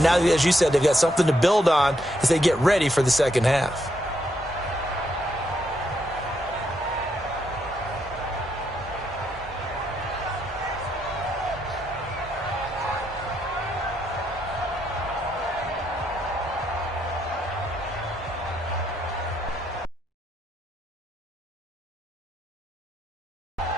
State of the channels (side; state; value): both; normal; correlation 0.77